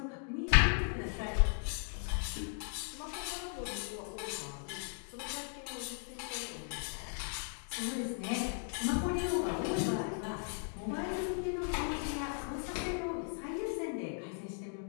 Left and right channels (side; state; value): right; silent; 53 dB below the other